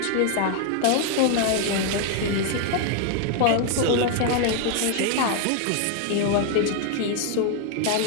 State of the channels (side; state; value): both; different; correlation 0.00